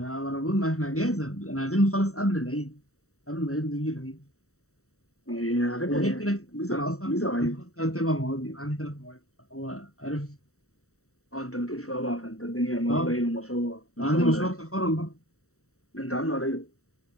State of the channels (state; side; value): late; right; 0.64 ms